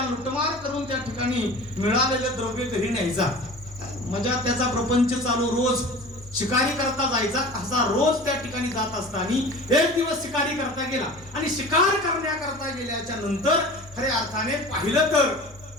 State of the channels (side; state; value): both; normal; correlation 0.38